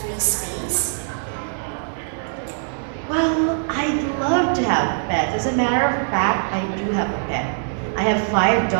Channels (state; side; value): silent; left; digital silence